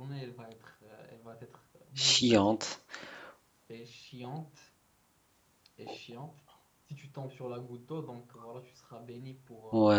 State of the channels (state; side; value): identical; both; correlation 1.00